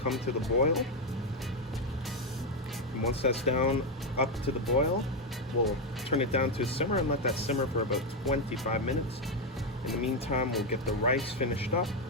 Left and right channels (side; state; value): both; normal; correlation 0.06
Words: to the boil. And once that's down up to the boil, we'll turn it down to a simmer and let that simmer for about 25 minutes. In the meantime, we'll get the rice finished up,